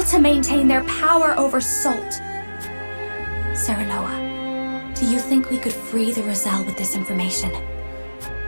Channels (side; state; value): both; inverted; correlation -1.00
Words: to maintain their power over salt. Serenoa, do you think we could free the Roselle with this information?